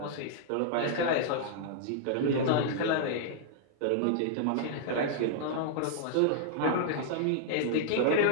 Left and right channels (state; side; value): different; both; correlation -0.01